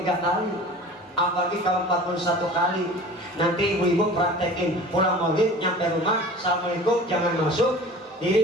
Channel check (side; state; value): both; normal; correlation 0.41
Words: kali. Apalagi kalau 41 kali. Nanti ibu-ibu praktekin pulang maulid nyampe rumah, assalamualaikum jangan masuk,